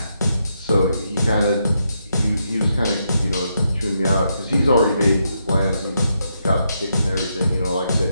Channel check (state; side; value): inverted; both; correlation -0.80